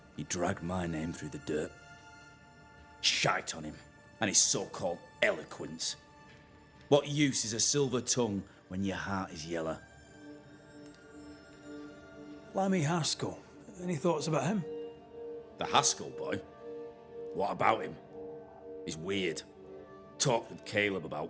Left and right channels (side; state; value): both; identical; correlation 1.00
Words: He dragged my name through the dirt. Shite on him, and his so-called eloquence. What use is a silver tongue when your heart is yellow? Lammy Haskell. Any thoughts about him? The Haskell boy? What about him? He's weird. Talked with Caleb